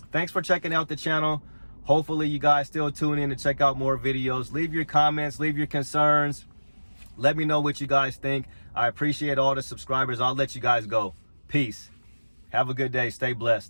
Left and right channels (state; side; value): inverted; both; correlation -1.00